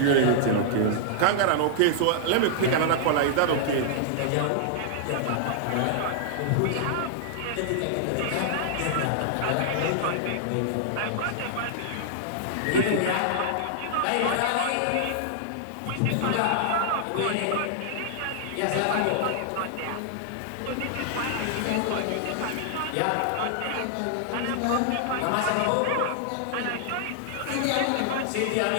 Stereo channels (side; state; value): both; different; correlation -0.01